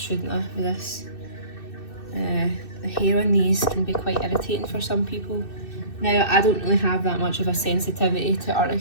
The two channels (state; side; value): late; right; 2.6 ms